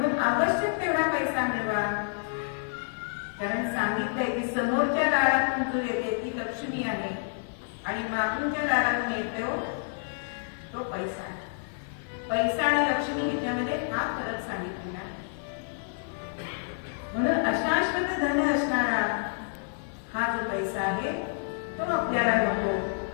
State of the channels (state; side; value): silent; right; 55 dB below the other